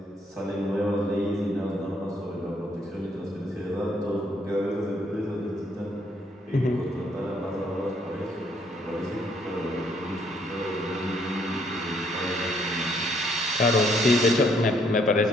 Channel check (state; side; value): normal; both; correlation 0.69